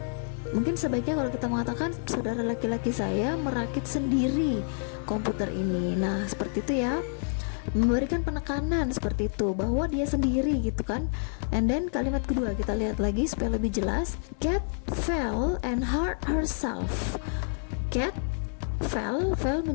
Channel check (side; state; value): right; silent; digital silence